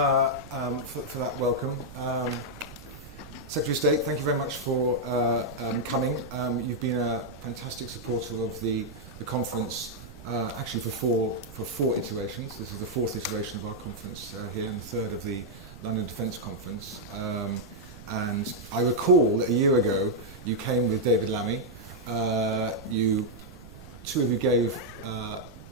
that welcome. Secretary of State, thank you very much for coming. You've been a fantastic supporter of the conference, actually for four iterations. This is the fourth iteration of our conference here, and the third of the London Defence Conference. And I recall that a year ago you came with David Lammy. Two of you gave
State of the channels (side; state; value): right; noise; rumble, 16 dB below the sound